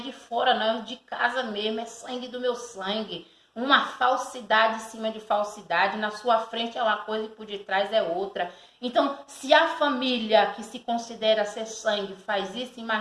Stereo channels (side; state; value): both; identical; correlation 1.00